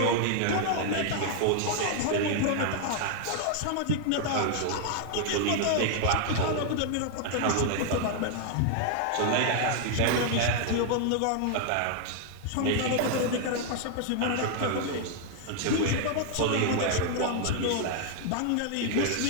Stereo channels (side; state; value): both; different; correlation 0.00